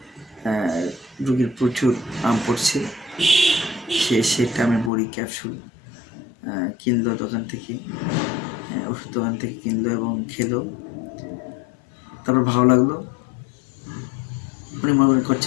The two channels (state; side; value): drops out; right; at 4.9 s